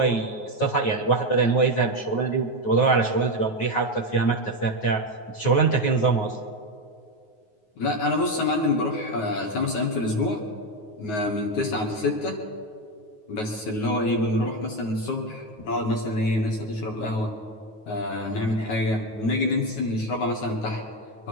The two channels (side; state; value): right; late; 9.4 ms